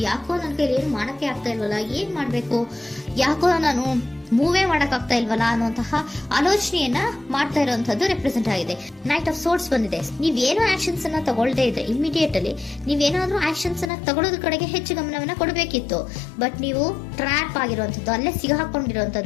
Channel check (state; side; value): drops out; right; at 13.9 s